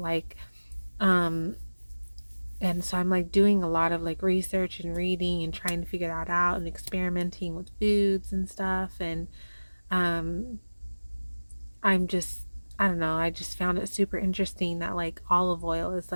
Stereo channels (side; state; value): both; inverted; correlation -1.00